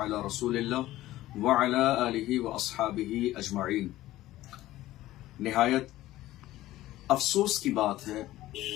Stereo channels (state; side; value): quieter; right; 15.7 dB